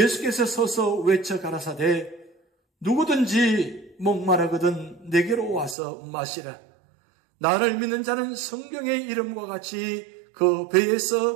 서서 외쳐 가라사대 누구든지 목마르거든 내게로 와서 마시라. 나를 믿는 자는 성경의 이름과 같이 그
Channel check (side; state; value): left; drops out; at 5.8 s